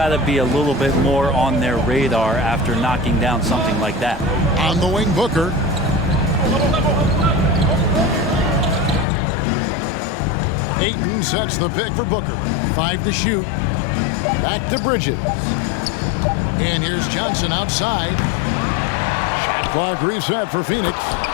to be a little bit more on their radar after knocking down something like that. On the wing, Booker. Ayton sets the pick for Booker. 5 to shoot. Back to Bridges. And here's Johnson outside. Shot clock reset for Phoenix.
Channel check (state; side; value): drops out; right; at 9.1 s